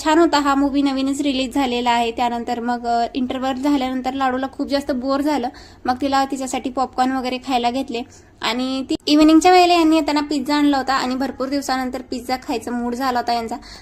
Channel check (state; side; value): identical; both; correlation 1.00